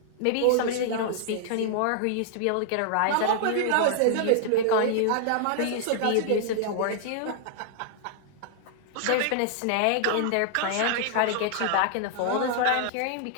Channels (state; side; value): different; both; correlation -0.01